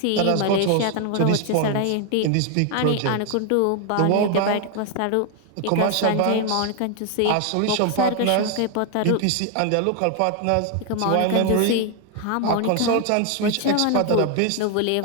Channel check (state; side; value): different; both; correlation 0.00